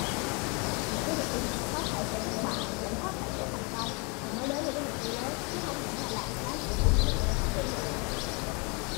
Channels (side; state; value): right; quieter; 32.1 dB